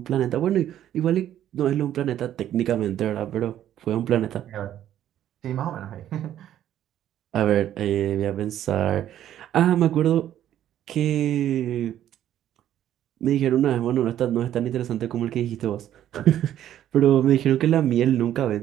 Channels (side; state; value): left; quieter; 11.5 dB